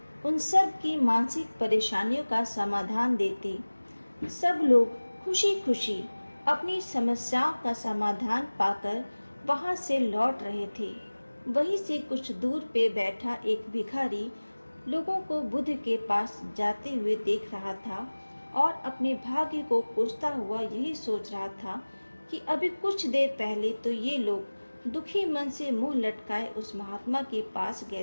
उन सब की मानसिक परेशानियों का समाधान देते। सब लोग खुशी खुशी अपनी समस्याओं का समाधान पाकर वहां से लौट रहे थे। वहीं से कुछ दूर पे बैठा एक भिखारी लोगों को बुद्ध के पास जाते हुए देख रहा था और अपने भाग्य को कोसता हुआ यही सोच रहा था कि अभी कुछ देर पहले तो ये लोग दुखी मन से मुंह लटकाए उस महात्मा के पास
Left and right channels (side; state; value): both; inverted; correlation -1.00